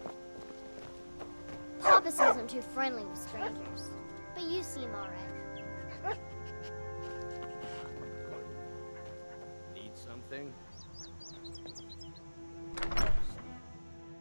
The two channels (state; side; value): inverted; both; correlation -1.00